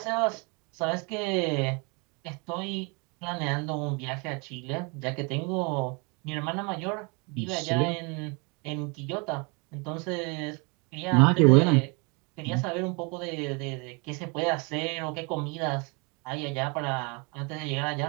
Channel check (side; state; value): left; quieter; 31.6 dB